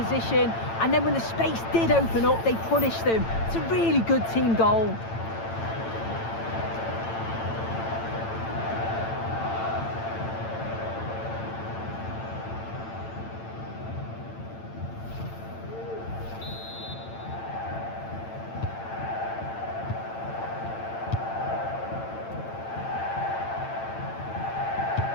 position, and then when the space did open up, they punished them. It's a really good team goal.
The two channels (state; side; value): late; right; 8.9 ms